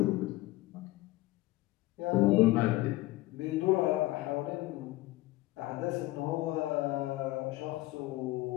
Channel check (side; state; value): right; quieter; 18.2 dB